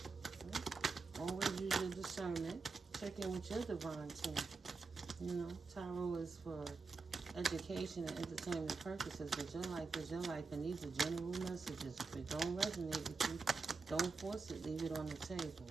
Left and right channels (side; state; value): left; quieter; 4.3 dB